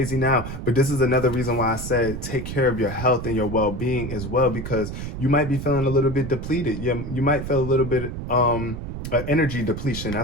now. But this is another reason why I said take care of your health and your well-being as well, because you might be feeling a little bit depleted. You might feel a little bit energy depletion.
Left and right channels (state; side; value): noise; right; rumble, 7 dB below the sound